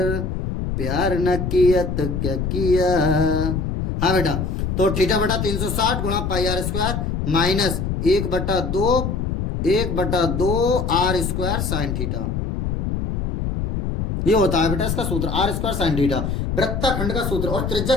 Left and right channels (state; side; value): noise; left; rumble, 2 dB below the sound